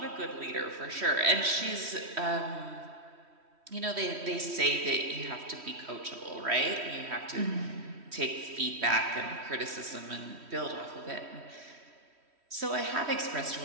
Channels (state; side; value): late; left; 3.1 ms